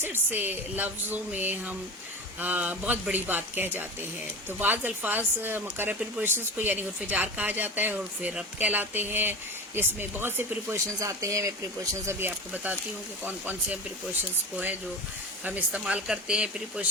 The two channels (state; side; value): normal; both; correlation 0.29